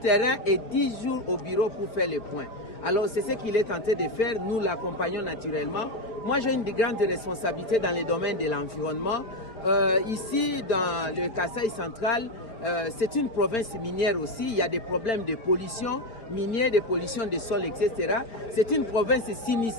et 10 jours au bureau pour faire le point. Alors c'est ce qu'il est tenté de faire, nous l'accompagnons naturellement. Moi j'ai une grande responsabilité dans le domaine de l'environnement. Ici dans le Kasaï central, c'est une province minière aussi, il y a des problèmes de pollution minière, de pollution des sols, etc. C'est une province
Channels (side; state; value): right; late; 4.4 ms